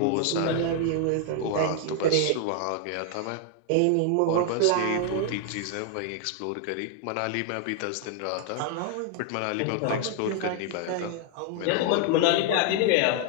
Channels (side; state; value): both; different; correlation 0.00